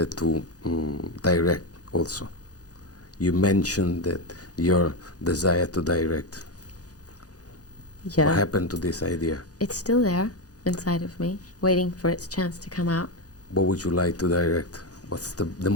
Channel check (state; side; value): late; right; 0.67 ms